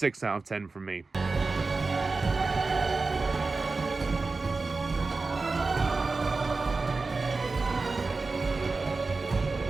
out of 10 from me.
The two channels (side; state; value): left; quieter; 3.9 dB